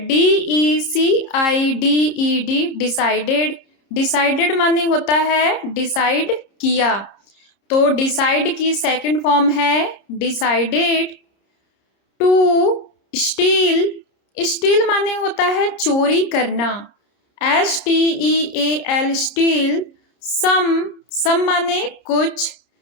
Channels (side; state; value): right; late; 30 ms